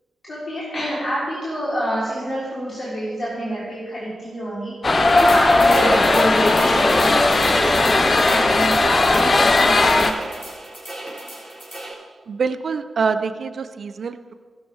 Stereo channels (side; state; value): both; normal; correlation 0.93